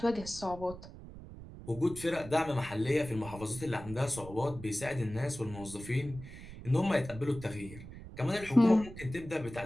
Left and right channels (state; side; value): noise; right; rumble, 14 dB below the sound